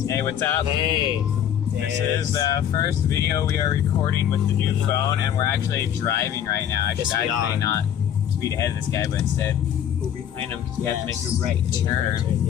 Hey, what's up? Hey. This is the first video we are recording with the new phone, and we're actually driving right now. I should actually not speed ahead of this guy, but instead go behind him because we have to make a right turn.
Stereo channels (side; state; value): right; quieter; 9.7 dB